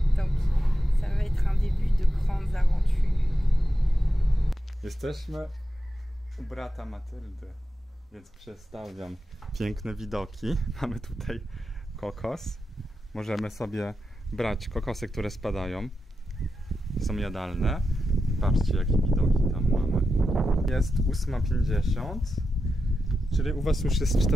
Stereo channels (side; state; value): both; normal; correlation 0.89